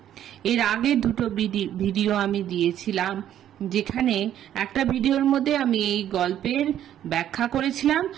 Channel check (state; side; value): quieter; left; 11.1 dB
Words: এর আগে দুটো ভিডিও আমি দিয়েছিলাম, যেখানে একটা ভিডিওর মধ্যে আমি এই গল্পের ব্যাখ্যা করেছিলাম